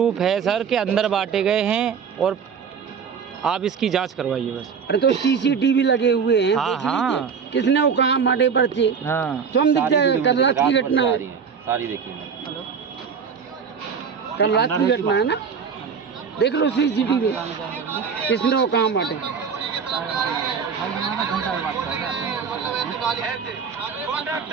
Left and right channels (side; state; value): left; quieter; 6.4 dB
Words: है सर कि अंदर बांटे गए हैं और आप इसकी जांच करवाइए बस। अरे तो सीसीटीवी लगे हुए हैं, हाँ, देख हाँ। लीजिए किसने वो कहाँ बांटे पर्चे। हाँ स्वयं दिख जाएगा, कल रात की घटना है, सारी देखिए मैंने। कल रात की घटना है ना, देख लो सीसीटीवी किसने वो कहाँ बांटे।